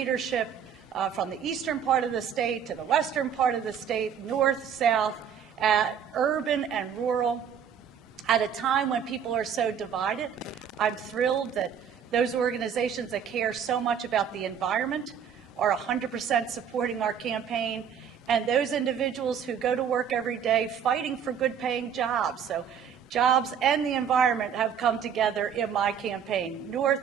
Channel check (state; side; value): quieter; left; 7.9 dB